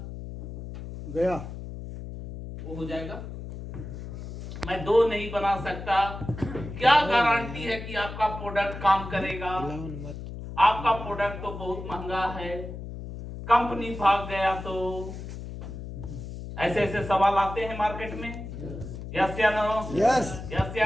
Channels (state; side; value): noise; left; hum, 9 dB below the sound